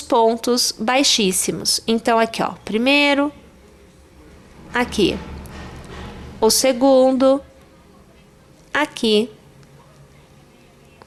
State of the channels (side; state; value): both; identical; correlation 1.00